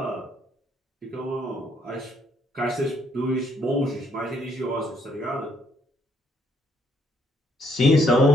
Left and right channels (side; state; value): both; normal; correlation 0.69